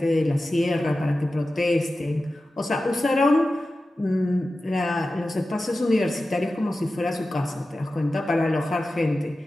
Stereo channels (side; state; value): both; normal; correlation 0.94